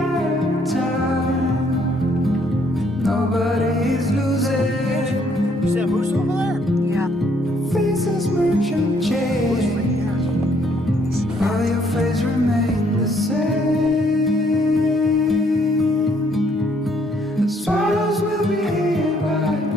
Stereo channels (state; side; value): normal; both; correlation 0.67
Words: of time. Nobody is losing. You see that moose over there? Yeah. Faces merchant change, while your face remain the same. Swallows will be here by